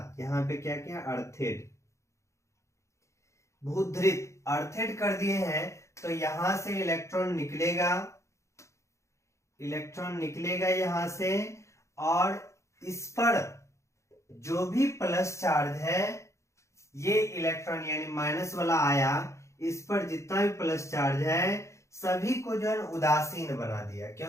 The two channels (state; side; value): late; right; 0.14 ms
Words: यहाँ पे क्या किया, अर्थेड भूधृत अर्थेड कर दिए हैं, तो यहां से इलेक्ट्रॉन निकलेगा, इलेक्ट्रॉन निकलेगा यहां से, और इस पर जो भी प्लस चार्ज है ये इलेक्ट्रॉन यानी माइनस वाला आया, इस पर जितना भी प्लस चार्ज है सभी को जो है उदासीन बना दिया,